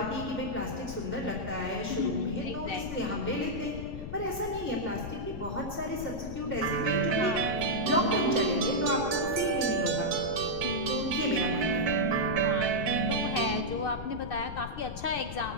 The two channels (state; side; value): noise; left; rumble, 9 dB below the sound